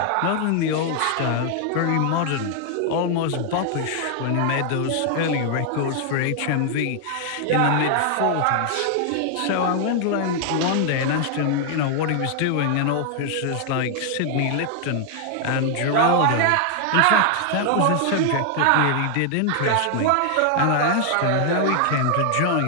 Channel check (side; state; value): both; different; correlation 0.00